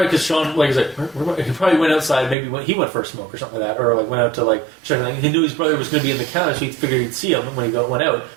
because Sean, like, he's like, he probably went outside, maybe he went for a smoke or something like that, or like went out to like check. He knew his brother was going to be in the counter, so he figured he'd see him when he went out.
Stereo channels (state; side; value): drops out; left; at 2.4 s